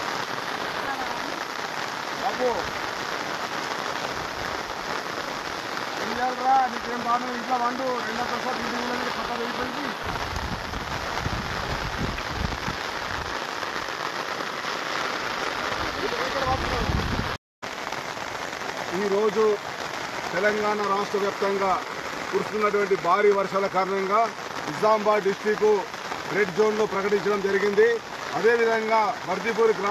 बाबू రా నీకేం బాగా ఇంట్లో వండు రెండో ప్రసాద్ ఇంటి పక్క వెళ్ళిపోయింది. ఈరోజు తెలంగాణ రాష్ట్ర వ్యాప్తంగా కురుస్తున్నటువంటి భారీ వర్షాల కారణంగా నిజామాబాద్ డిస్టిక్ రెడ్ జోన్లో ప్రకటించడం జరిగింది. అదేవిధంగా బర్దిపూర్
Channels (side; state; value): both; identical; correlation 1.00